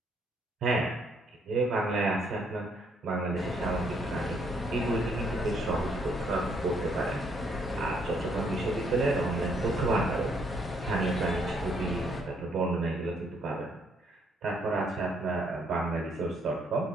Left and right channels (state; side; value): normal; both; correlation 0.69